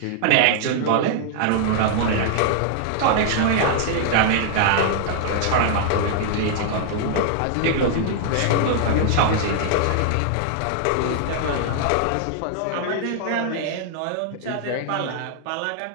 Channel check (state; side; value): different; both; correlation -0.01